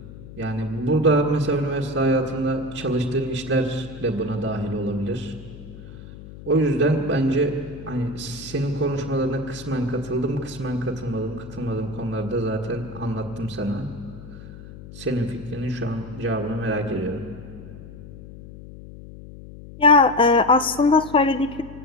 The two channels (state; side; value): noise; left; hum, 15 dB below the sound